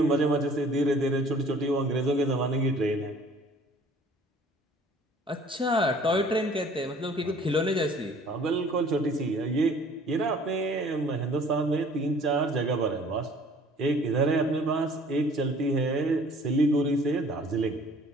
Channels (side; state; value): both; normal; correlation 0.53